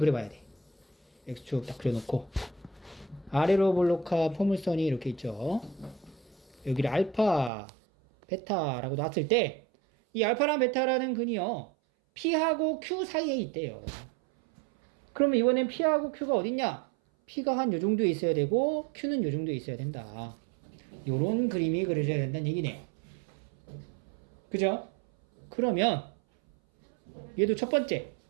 돼. X축 딱 그려놓고 아래로 볼록한 포물선이 이렇게 있죠. 여기를 알파, 베타라고 놨을 때 이 알파랑 베타라는 근이요 P하고 Q 사이에 있대요. 그러면 이번엔 P하고 Q가 어딨냐? P가 한 요 정도에 있어야 되고 Q는 요 정도에 있어야 된다. 요런 그림이 그려져야 된다는 얘기네. 그죠? 그러면 얘도 첫 번째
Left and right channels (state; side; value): drops out; left; at 7.5 s